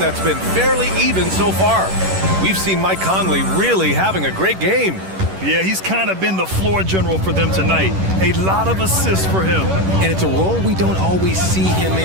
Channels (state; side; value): late; left; 11 ms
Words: been fairly even so far. We've seen Mike Conley really having a great game. Yeah, he's kind of been the floor general for them tonight. A lot of assists for him. And it's a role we don't always see him